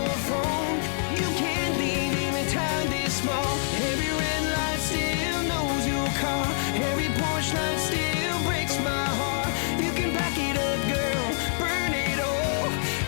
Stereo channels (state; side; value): silent; right; digital silence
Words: phone. You can't leave in a town this small. Every red light still knows your car. Every Porsche light still breaks my heart. You can back it up, girl, burn it all.